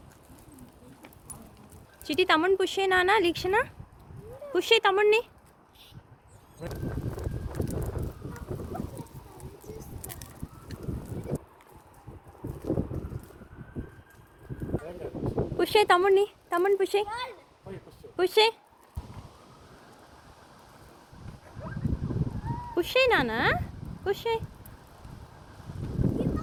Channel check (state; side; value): identical; both; correlation 1.00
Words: చిటి తమ్ముడిని పుష్ అయినా లిక్షణ, పుష్ అయ్యి తమ్ముడిని. పుష్ అయ్యి తమ్ముడిని పుష్ అయ్యి, పుష్ అయ్యి, పుష్ అయ్యి నానా, పుష్ అయ్యి.